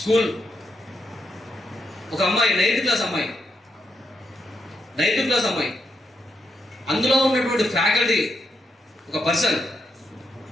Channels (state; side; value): normal; both; correlation 0.81